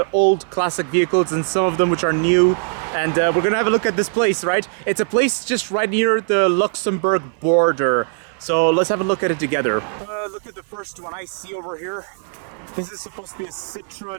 old classic vehicles and some of them which are new. And we're gonna have a look at this place, right? It's a place just right near the Luxembourg border. So let's have a look at it together. Look at the first one I see over here. This is supposed to be a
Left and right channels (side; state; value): left; silent; 66 dB below the other